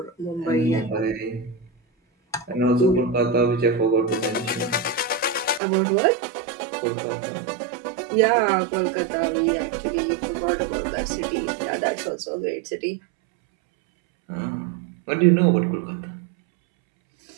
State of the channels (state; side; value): drops out; left; at 5.6 s